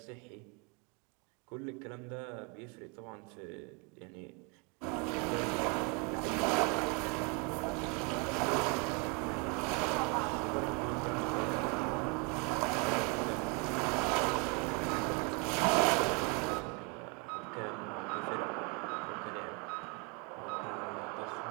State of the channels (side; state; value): left; quieter; 31.4 dB